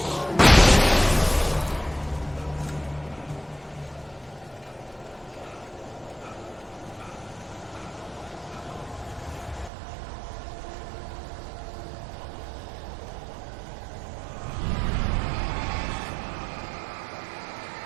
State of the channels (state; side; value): drops out; left; at 9.7 s